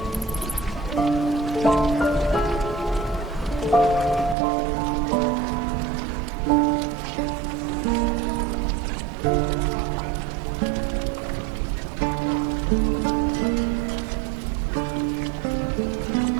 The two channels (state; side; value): drops out; left; at 4.4 s